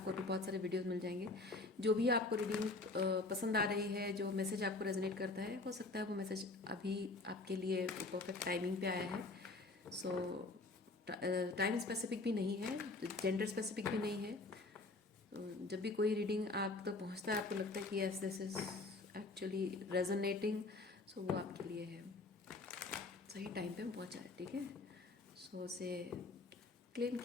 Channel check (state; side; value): quieter; right; 3.3 dB